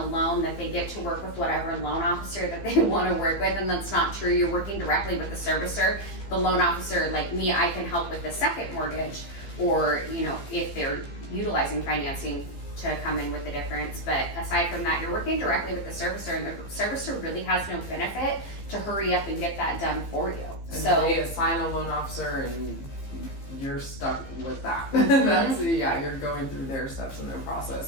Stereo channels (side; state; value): right; late; 15 ms